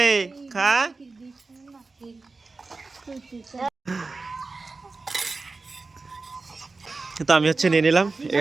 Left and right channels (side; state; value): left; quieter; 3.8 dB